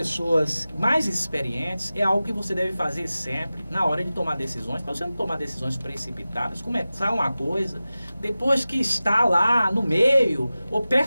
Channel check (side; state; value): both; inverted; correlation -0.96